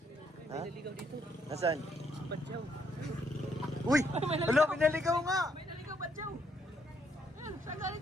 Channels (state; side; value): normal; both; correlation 0.72